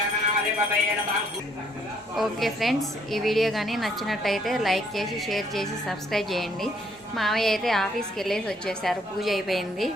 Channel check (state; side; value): normal; both; correlation 0.66